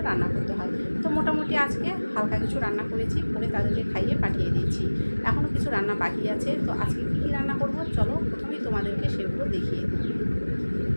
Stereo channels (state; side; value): inverted; both; correlation -1.00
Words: রান্না করতে হয়। তো মোটামুটি আজকে হালকা কিছু রান্না করেছি, করে তাদেরকে খাইয়ে পাঠিয়ে দিয়েছি। এখনও কিছু রান্না বাকি আছে। তো আজকে কী কী রান্না করব, চলো প্রথমেই তোমাদেরকে সেগুলো দেখিয়ে দিই।